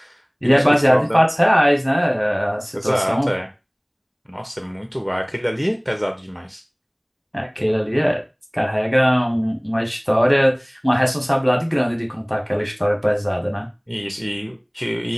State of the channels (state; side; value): identical; both; correlation 1.00